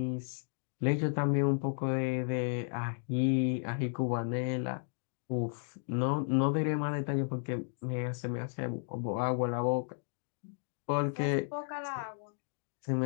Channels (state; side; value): silent; right; digital silence